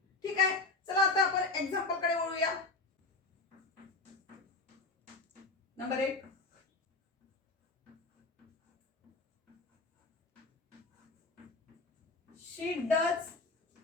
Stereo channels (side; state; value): right; quieter; 3.5 dB